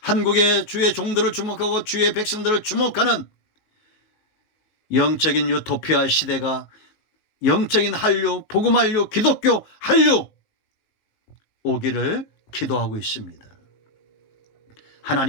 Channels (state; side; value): late; right; 19 ms